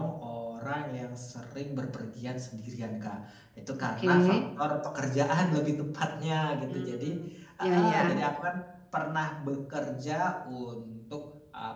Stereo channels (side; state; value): both; identical; correlation 1.00